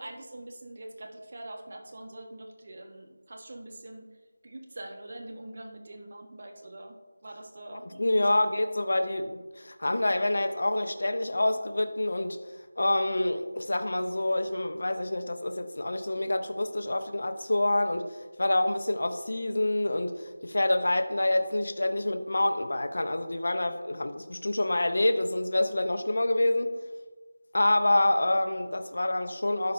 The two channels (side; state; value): both; inverted; correlation -0.99